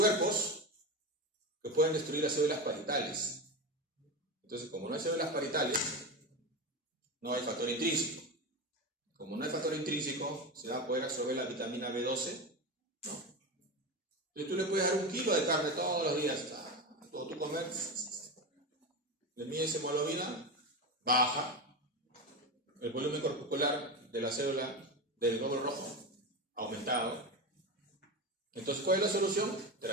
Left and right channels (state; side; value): normal; both; correlation 0.20